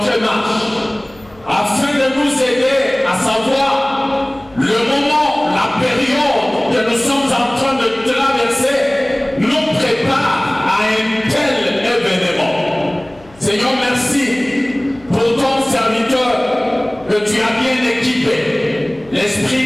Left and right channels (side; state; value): left; noise; hum, 27 dB below the sound